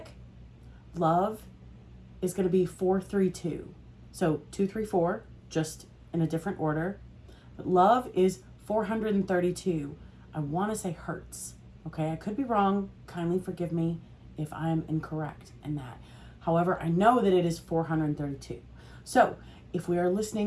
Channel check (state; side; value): identical; both; correlation 1.00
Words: love is going to be 432. So 234, just in a different order. But love is 432. I want to say hertz. Okay, I could be wrong. Kindly forgive me if I am incorrect in that. However, I know that it is 432. So if we are